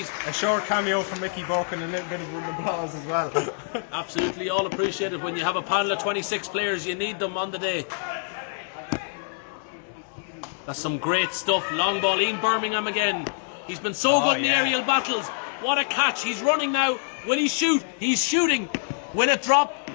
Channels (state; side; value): silent; right; digital silence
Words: A short cameo from Mickey Burke and a little bit of an applause as well. Absolutely, all appreciated. When you have a panel of 26 players, you need them on the day. That's some great stuff. Long ball, Ian Birmingham again. He's been so good in the aerial battles. What a catch. He's running now. Will he shoot? He's shooting. Will it drop?